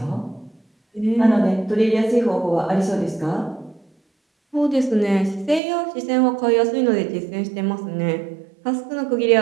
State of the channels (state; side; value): drops out; left; at 5.6 s